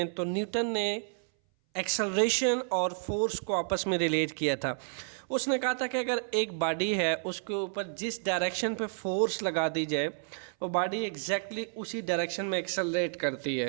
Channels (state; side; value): silent; left; 57 dB below the other